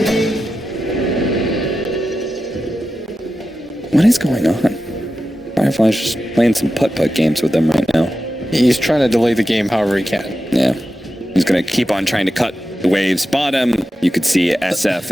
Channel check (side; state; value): both; normal; correlation 0.91